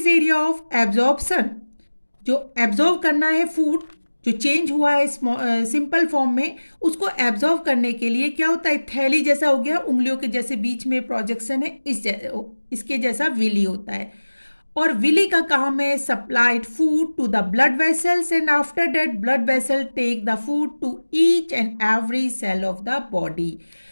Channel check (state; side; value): inverted; both; correlation -1.00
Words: area of absorption. जो एब्जॉर्व करना है फूड, जो चेंज हुआ है सिंपल फॉर्म में, उसको एब्जॉर्व करने के लिए क्या होता है, थैली जैसा हो गया, उंगलियों के जैसे बीच में प्रोजेक्शन है, इसके जैसा विली होता है। और विली का काम है supplied food to the blood vessels, and after that blood vessel take the food to each and every cell of the body.